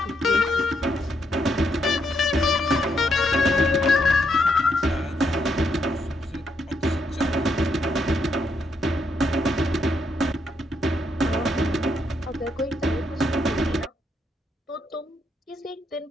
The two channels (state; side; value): normal; both; correlation 0.77